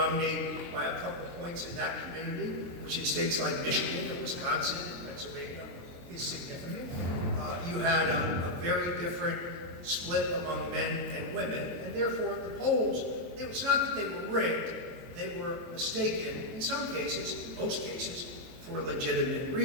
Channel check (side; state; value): left; late; 23 ms